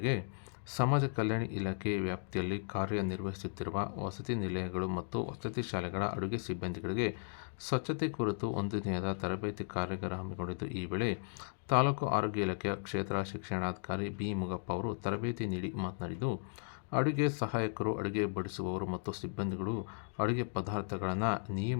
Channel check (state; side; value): silent; right; digital silence